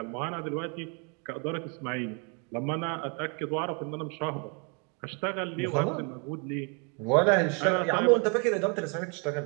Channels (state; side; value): quieter; left; 36.2 dB